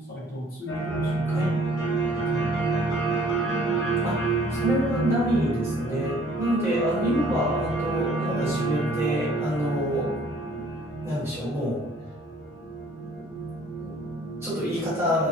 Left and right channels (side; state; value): both; normal; correlation 0.57